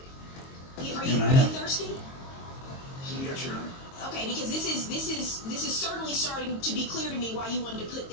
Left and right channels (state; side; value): late; right; 22 ms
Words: Are And I you have- thirsty? Yes, Your Honor. Okay, because this is certainly starting to be clear to me why you wanted to put